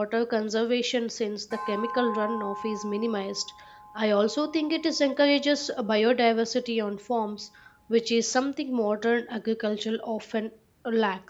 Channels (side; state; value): both; identical; correlation 1.00